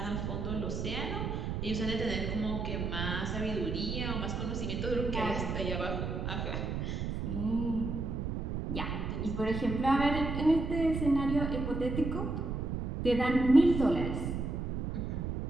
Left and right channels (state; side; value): noise; right; rumble, 2 dB below the sound